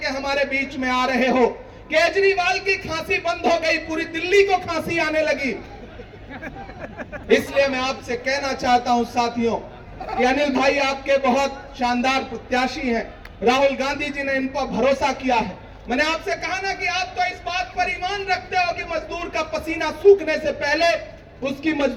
हमारे बीच में आ रहे हो। केजरीवाल की खांसी बंद हो गई, पूरी दिल्ली को खांसी आने लगी। इसलिए मैं आपसे कहना चाहता हूं साथियों कि अनिल भाई आपके बहुत शानदार प्रत्याशी हैं। राहुल गांधी जी ने इन पर भरोसा किया है। मैंने आपसे कहा ना कि आप तो इस बात पर ईमान रखते हो कि मजदूर का पसीना सूखने से पहले उसकी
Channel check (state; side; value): identical; both; correlation 1.00